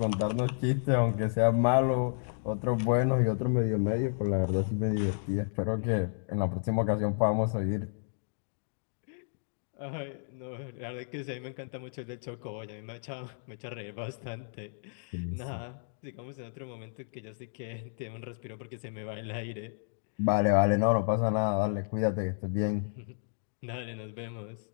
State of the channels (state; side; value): silent; right; digital silence